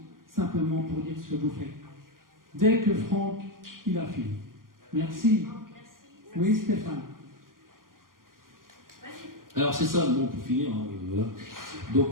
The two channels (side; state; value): left; late; 0.91 ms